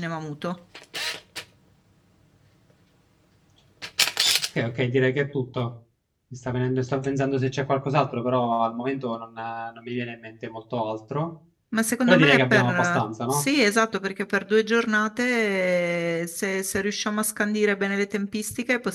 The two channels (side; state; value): both; identical; correlation 1.00